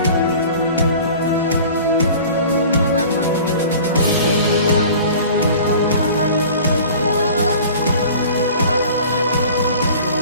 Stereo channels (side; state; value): both; inverted; correlation -0.43